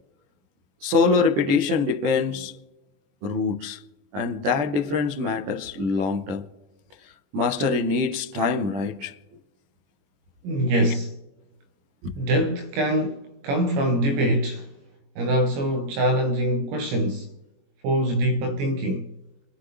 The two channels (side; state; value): left; late; 21 ms